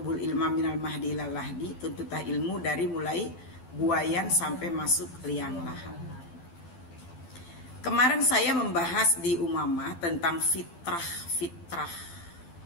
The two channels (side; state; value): right; late; 12 ms